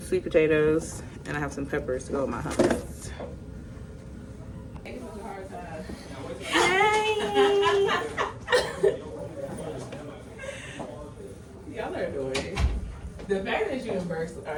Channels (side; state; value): both; identical; correlation 1.00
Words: sweet potatoes. And I have some peppers to go with my hummus. Hi! Y'all are doing. The fact that you and Burks